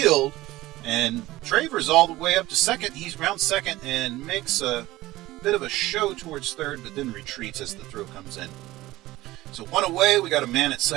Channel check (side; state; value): left; quieter; 17.5 dB